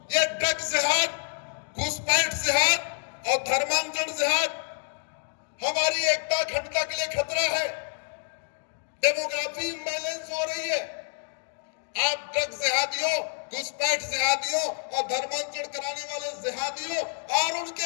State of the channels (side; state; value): right; silent; digital silence